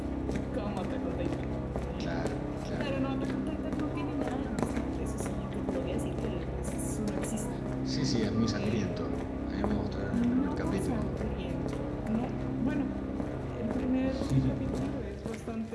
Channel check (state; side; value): identical; both; correlation 1.00